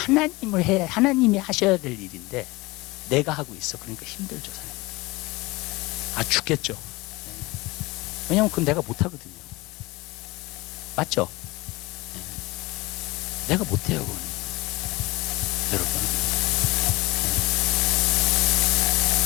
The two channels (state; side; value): quieter; right; 22.3 dB